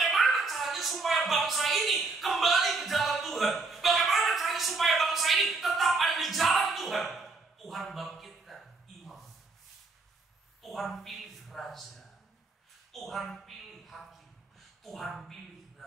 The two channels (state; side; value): quieter; left; 3.8 dB